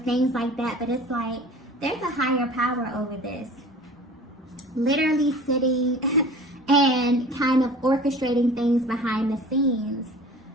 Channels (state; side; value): normal; both; correlation 0.43